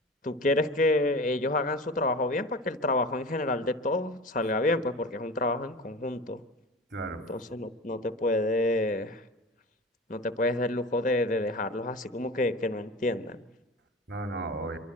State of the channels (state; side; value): normal; both; correlation 0.34